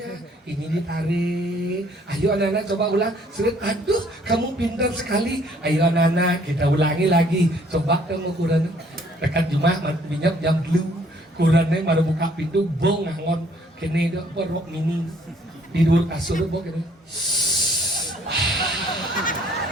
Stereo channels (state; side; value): normal; both; correlation 0.62